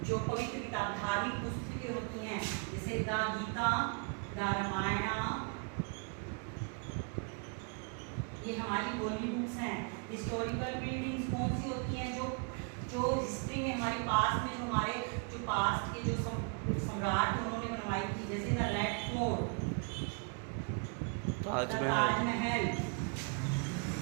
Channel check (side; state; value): left; quieter; 35.9 dB